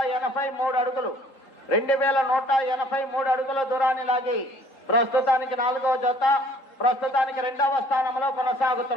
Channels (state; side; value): late; right; 3.8 ms